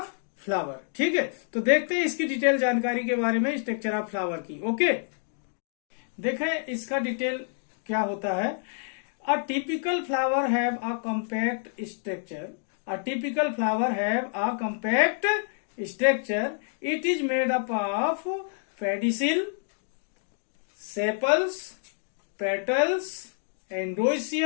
फ्लावर। ठीक है, तो देखते हैं इसकी डिटेल जानकारी के बारे में स्ट्रक्चर ऑफ फ्लावर की। ओके, देखें इसका डिटेल क्या होता है। A typical flower have a compact structure. A typical flower have a compact structure. It is made up of pedicel, sepals, petals,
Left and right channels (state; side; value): silent; right; digital silence